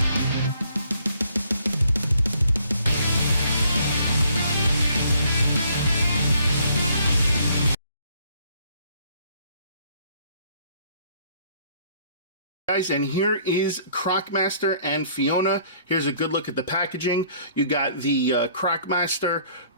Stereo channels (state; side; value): inverted; both; correlation -0.63